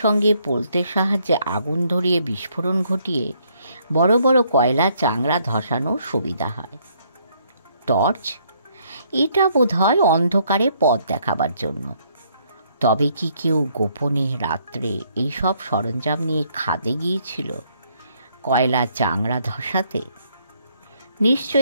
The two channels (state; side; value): inverted; both; correlation -0.69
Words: পোলতের সাহায্যে আগুন ধরিয়ে বিস্ফোরণ ঘটিয়ে বড় বড় কয়লা চাংড়া ধসানোর সুবিধা হয়। টর্চ, এটা বোধহয় অন্ধকারে পথ দেখাবার জন্য। তবে কি কেউ গোপনে রাত্রে এইসব সরঞ্জাম নিয়ে খাদে গিয়েছিল কয়লা চাংড়া ধসাতে?